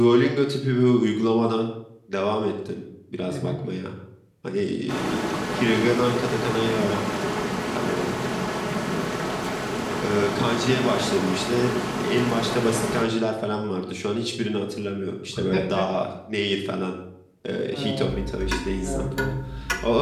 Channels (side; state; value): both; identical; correlation 1.00